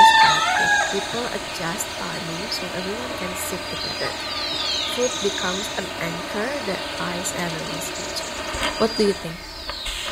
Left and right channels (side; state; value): both; identical; correlation 1.00